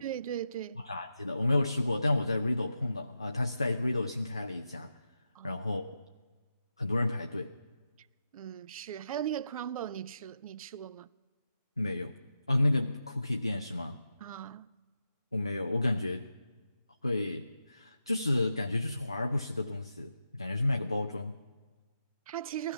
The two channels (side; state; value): both; inverted; correlation -0.88